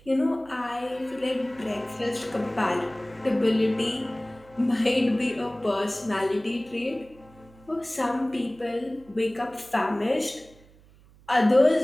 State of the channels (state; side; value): noise; right; hum, 26 dB below the sound